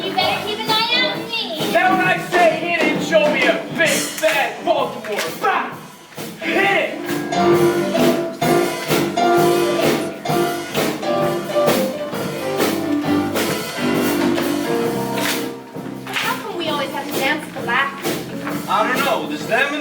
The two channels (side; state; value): both; identical; correlation 1.00